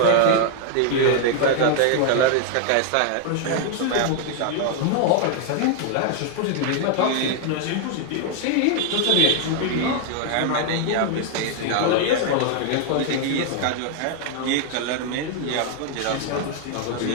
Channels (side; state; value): both; different; correlation 0.00